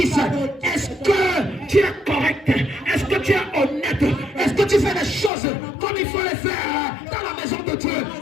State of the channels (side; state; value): right; drops out; at 5.3 s